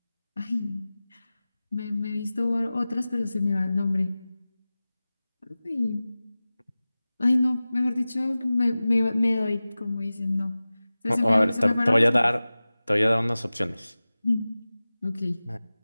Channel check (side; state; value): both; inverted; correlation -0.97